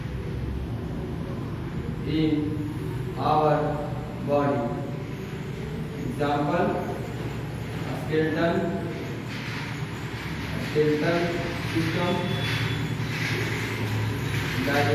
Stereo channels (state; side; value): identical; both; correlation 1.00